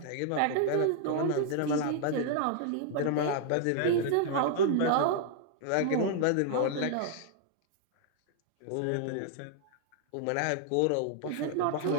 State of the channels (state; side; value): different; both; correlation 0.00